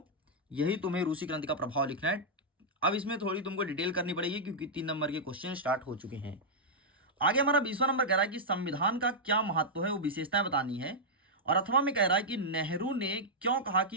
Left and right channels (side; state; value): both; normal; correlation -0.07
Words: यही तुम्हें रूसी क्रांति का प्रभाव लिखना है। अब इसमें थोड़ी तुमको डिटेल करनी पड़ेगी क्योंकि 3 नंबर के क्वेश्चन स्टार्ट हो चुके हैं। आगे हमारा 20वां नंबर कह रहा है कि संविधान का क्या महत्व है, वो विशेषताएं बतानी है। और अथवा में कह रहा है कि नेहरू ने क्यों कहा